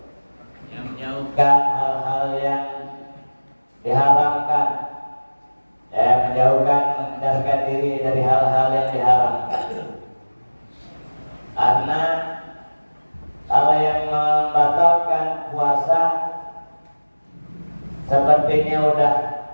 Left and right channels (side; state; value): both; inverted; correlation -1.00